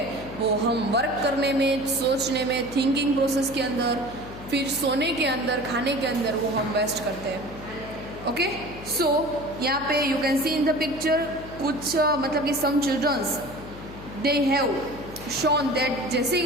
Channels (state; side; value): noise; left; hum, 14 dB below the sound